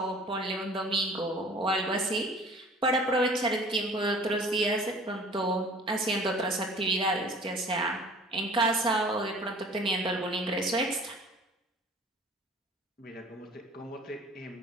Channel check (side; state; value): both; normal; correlation 0.47